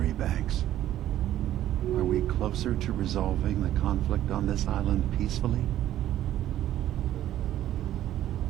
banks? Are we closer to resolving the conflict on this island peacefully?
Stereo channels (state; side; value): quieter; left; 12.6 dB